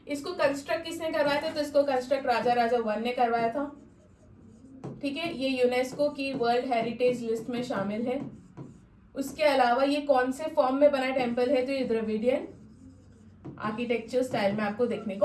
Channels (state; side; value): identical; both; correlation 1.00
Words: इसको कंस्ट्रक्ट किसने करवाया था? तो इसको कंस्ट्रक्ट राजा वन ने करवाया था। ठीक है, ये यूनेस्को की वर्ल्ड हेरिटेज लिस्ट में शामिल है। उसके अलावा ये कौन से फॉर्म में बना टेम्पल है? तो ये द्रविडियन आर्किटेक्चर स्टाइल में आपको देखने